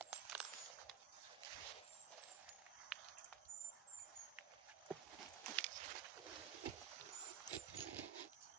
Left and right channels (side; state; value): left; quieter; 8.9 dB